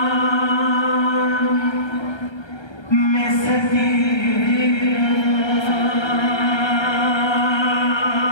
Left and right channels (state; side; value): late; right; 1.3 ms